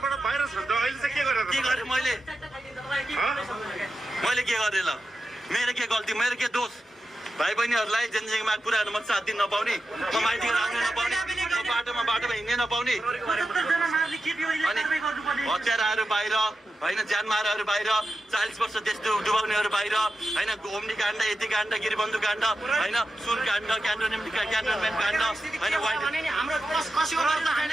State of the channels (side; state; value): both; normal; correlation 0.91